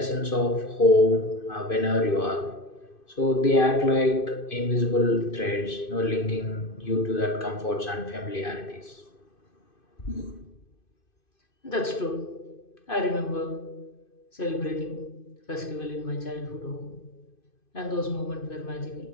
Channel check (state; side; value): late; right; 2.5 ms